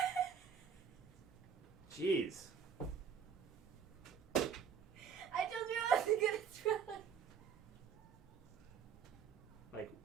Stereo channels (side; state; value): left; quieter; 7.2 dB